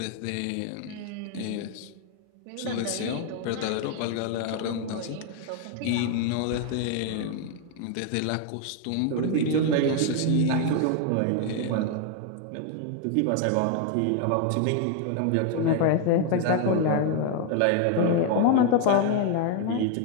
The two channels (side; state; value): both; different; correlation 0.00